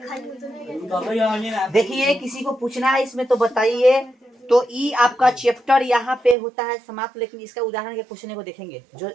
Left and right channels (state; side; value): drops out; left; at 6.4 s